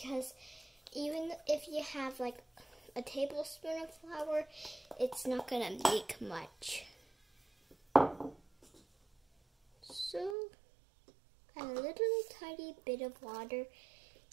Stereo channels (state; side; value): drops out; left; at 10.4 s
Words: even if you have like a tablespoon of flour, it's not going to make much. So, add a little tiny bit of water